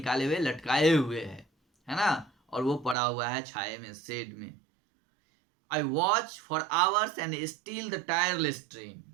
हुए, लटकाए हुए है ना, और वो पड़ा हुआ है छाए में, शेड में। I watch for hours and still the tireless train,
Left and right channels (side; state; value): left; drops out; at 3.0 s